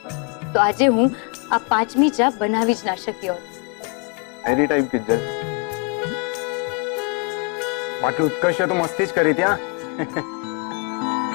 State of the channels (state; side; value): quieter; right; 33.6 dB